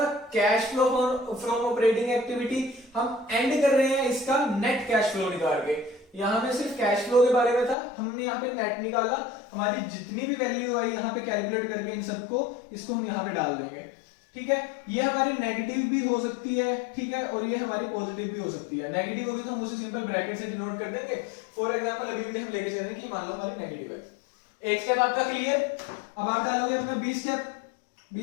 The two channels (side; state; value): right; drops out; at 7.8 s